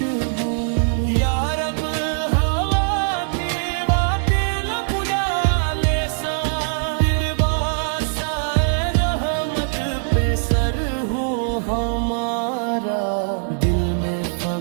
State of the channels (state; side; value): silent; left; digital silence